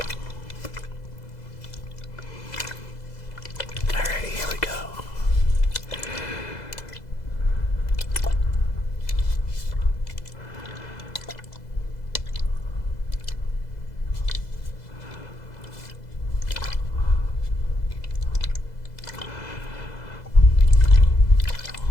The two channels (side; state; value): right; late; 2.0 ms